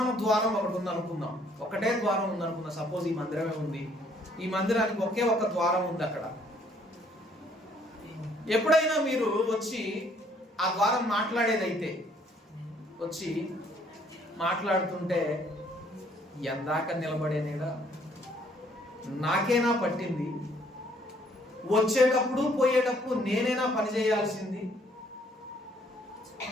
ద్వారం ఒకటి ఉంది అనుకుందాం. ఒకటే ద్వారం ఉంది అనుకుందాం. సపోజ్ ఈ మందిరమే ఉంది. ఈ మందిరానికి ఒకే ఒక ద్వారం ఉంది. అక్కడ ఎప్పుడైనా మీరు వచ్చి ఆ ద్వారం మాట్లాడేదైతే వచ్చి మాట్లాడుతుంటే ఎందాక నిలబడేనేడా, నాకేనా పట్టింది, వచ్చేటప్పుడు పోయేటప్పుడు నేనేనా పని చేయాల్సింది,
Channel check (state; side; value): normal; both; correlation 0.64